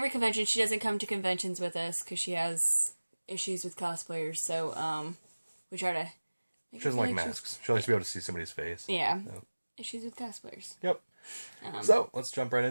convention. She doesn't come to conventions with us because she has issues with cosplayers. So we try to. She doesn't like masks. She likes to be able to see somebody's face. Yeah. So. Issues with cosplayers. Yep. So let's jump right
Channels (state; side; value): inverted; both; correlation -1.00